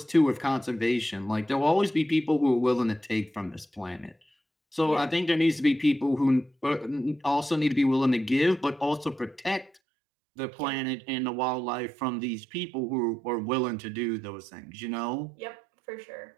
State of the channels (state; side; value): drops out; left; at 9.7 s